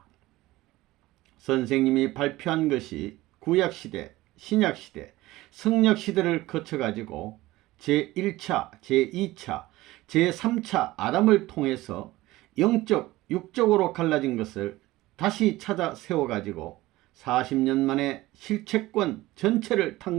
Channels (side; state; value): left; quieter; 18.1 dB